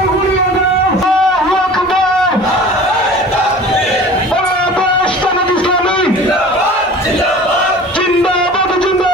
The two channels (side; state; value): both; normal; correlation 0.42